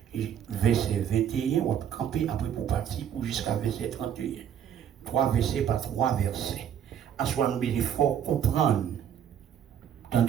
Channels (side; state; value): left; quieter; 9.2 dB